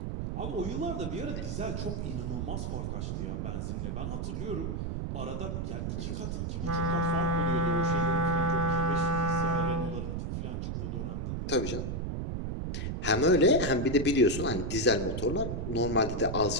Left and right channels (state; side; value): noise; right; rumble, 3 dB below the sound